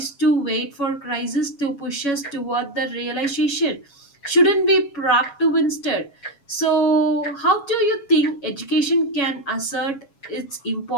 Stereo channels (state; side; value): late; right; 7.2 ms